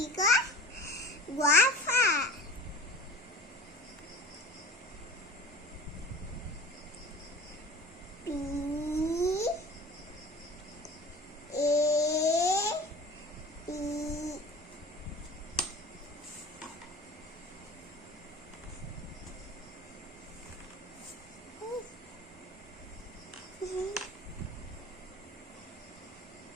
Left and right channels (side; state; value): both; normal; correlation 0.39